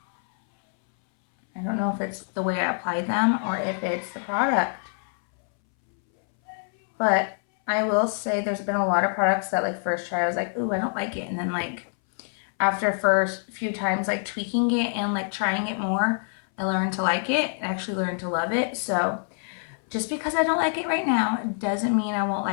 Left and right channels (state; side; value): silent; right; 61 dB below the other